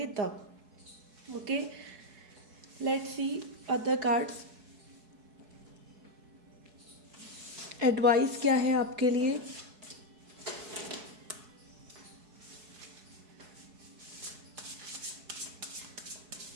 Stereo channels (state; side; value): late; left; 4.7 ms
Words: तब। Okay, let's C other cards. Advice क्या है आपके लिए?